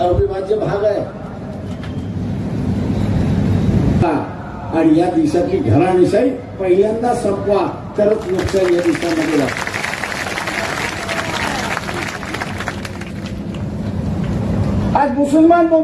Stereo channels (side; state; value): both; identical; correlation 1.00